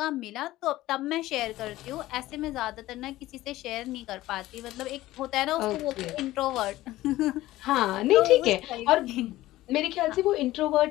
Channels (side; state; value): right; quieter; 16.4 dB